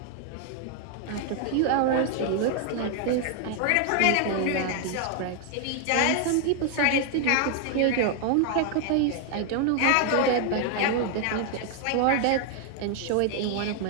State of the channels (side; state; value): both; different; correlation 0.00